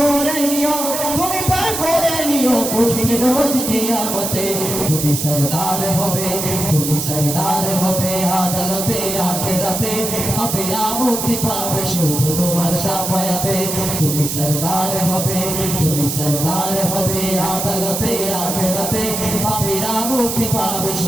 নিও, তুমি পার করে নিও কঠিন রোজ কিয়ামতে। তুমি সরদার হবে, তুমি সরদার হবে আদালতে আখিরাতে, পাপীরা মুক্তি পাবে শুধু তোমার শাফায়াতে। তুমি সরদার হবে, তুমি সরদার হবে আদালতে আখিরাতে, পাপীরা মুক্তি পাবে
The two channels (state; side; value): noise; right; hiss, 3 dB below the sound